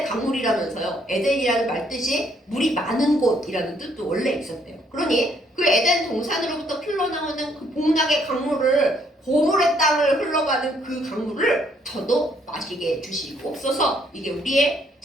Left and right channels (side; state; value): both; normal; correlation 0.68